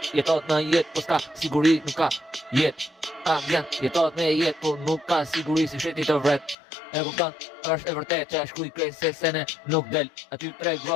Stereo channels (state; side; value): drops out; right; at 6.6 s